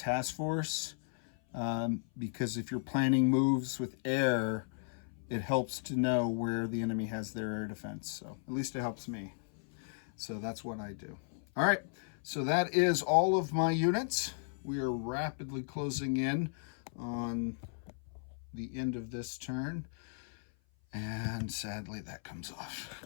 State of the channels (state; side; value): silent; right; 54 dB below the other